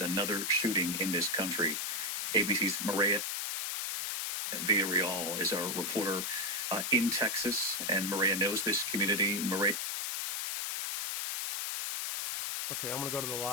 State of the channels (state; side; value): noise; left; hiss, 2 dB below the sound